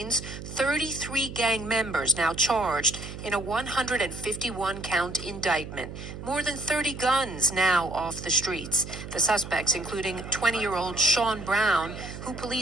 33 gang members now charged in a 151-count indictment. More than 30 guns now off the streets. The suspects, including 20-year-old Sean Brown, who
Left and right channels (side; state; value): right; noise; hum, 10 dB below the sound